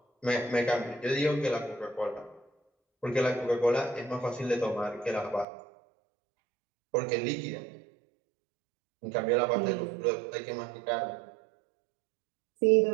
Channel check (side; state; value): left; drops out; at 5.5 s